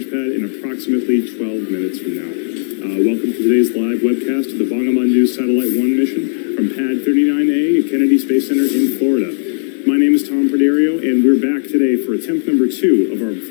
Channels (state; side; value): silent; right; digital silence